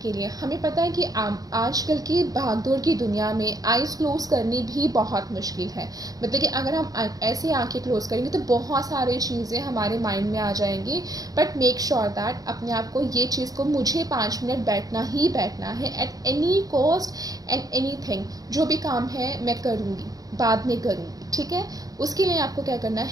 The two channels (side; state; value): left; late; 0.18 ms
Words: के लिए। हमें पता है कि आजकल की भागदौड़ की दुनिया में आइज़ क्लोज करनी भी बहुत मुश्किल है। मतलब कि अगर हम ऐसे आंखें क्लोज करेंगे तो बहुत सारी चीज़ें हमारे माइंड में आ जाएंगी। बट मेक श्योर दैट अपने आप को ये चीज़ को, मुझे 5 मिनट बैठना ही बैठना है at any cost and anything. जो भी काम है मैं करूँगी, बाद में करूँगी, ठीक है। उसके लिए आपको क्या करना